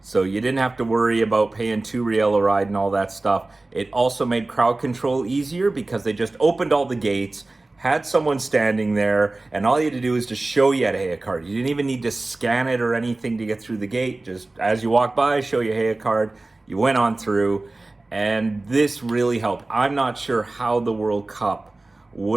you didn't have to worry about paying $2 a ride and all that stuff. It also made crowd control easier because they just opened all the gates, had someone standing there, and all you had to do was to show you had a Heya card. You didn't even need to scan it or anything to get through the gate. Just as you walk by, show your Heya card. You went on through, and this really helped. I'm not sure how the World Cup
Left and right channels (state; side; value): quieter; left; 3.0 dB